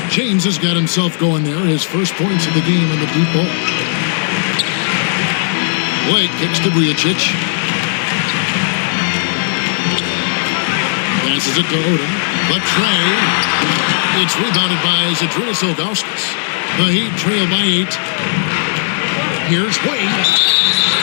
James has got himself going there. His first points of the game on the deep ball. Blake kicks to Vujacic. Passes it to Odom. The tray. It's rebounded by Zydrunas Ilgauskas. The Heat trail by 8. Here's Wade.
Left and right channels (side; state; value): right; silent; digital silence